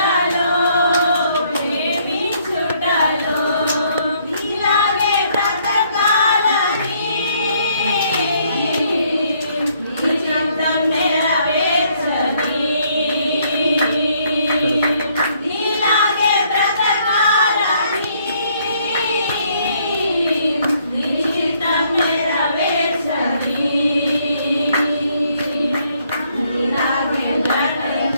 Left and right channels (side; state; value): both; inverted; correlation -0.67